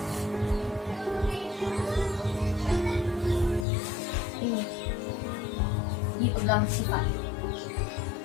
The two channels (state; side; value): drops out; right; at 3.7 s